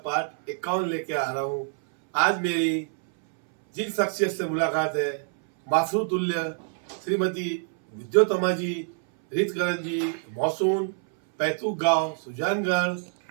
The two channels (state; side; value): silent; left; 61 dB below the other